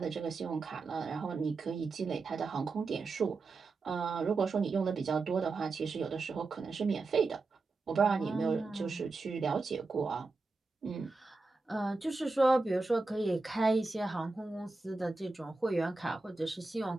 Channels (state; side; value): quieter; left; 3.7 dB